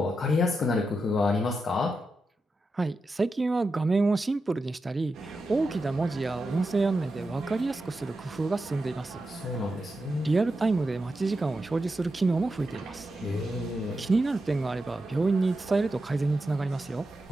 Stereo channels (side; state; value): both; normal; correlation 0.89